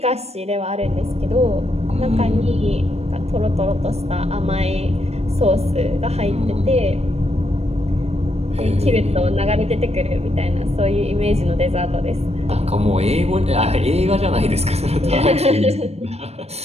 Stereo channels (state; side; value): late; left; 0.31 ms